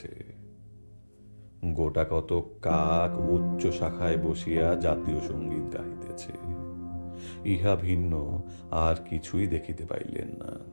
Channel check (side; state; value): both; inverted; correlation -1.00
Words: গোটা কত কাক উচ্চ শাখায় বসিয়া জাতীয় সঙ্গীত গাহিতেছে। ইহা ভিন্ন আর কিছুই দেখিতে পাইলেন না।